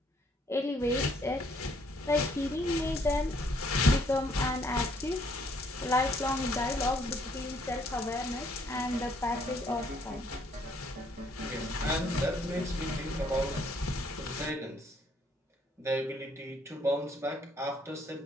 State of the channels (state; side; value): normal; both; correlation 0.66